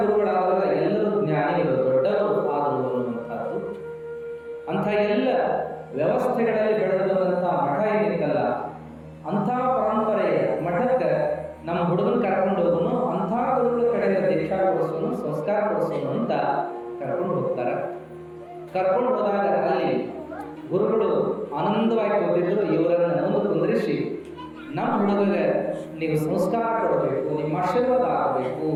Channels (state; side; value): identical; both; correlation 1.00